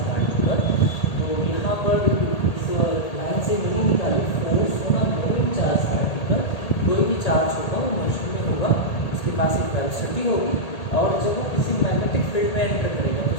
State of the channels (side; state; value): right; late; 1.8 ms